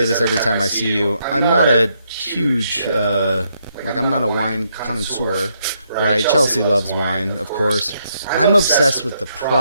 this every time I see you, I'm not a huge, I'm not a wine connoisseur, right? Chelsea loves wine, of course. I'm obsessed with the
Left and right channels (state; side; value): inverted; both; correlation -0.76